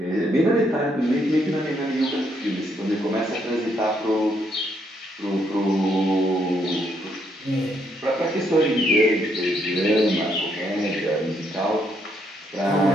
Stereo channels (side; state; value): both; normal; correlation 0.74